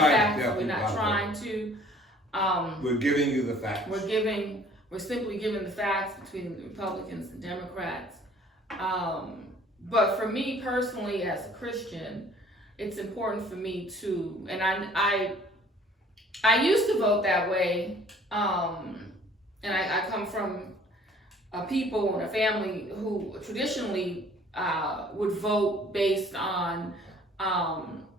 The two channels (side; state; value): both; normal; correlation 0.54